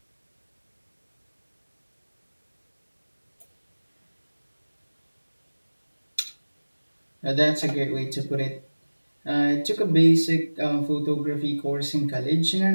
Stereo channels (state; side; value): inverted; both; correlation -1.00